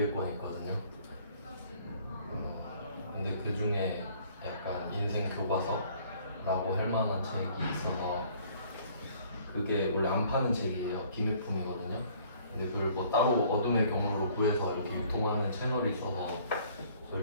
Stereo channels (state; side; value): inverted; both; correlation -0.57